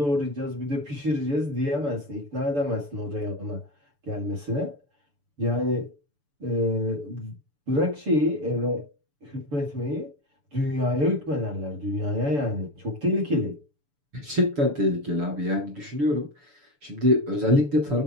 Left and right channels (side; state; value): left; late; 6.9 ms